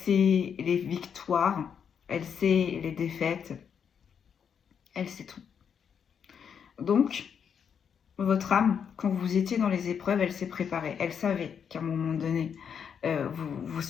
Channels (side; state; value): right; quieter; 7.4 dB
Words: les victoires, elle sait les défaites. Elle sait tout. Donc, votre âme, quand vous étiez dans les épreuves, elle s'est préparée. Elle savait qu'à un moment donné, vous